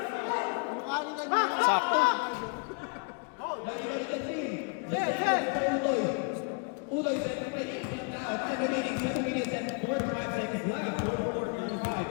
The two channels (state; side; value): quieter; right; 36.5 dB